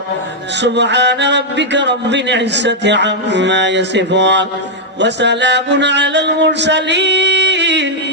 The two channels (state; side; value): normal; both; correlation -0.03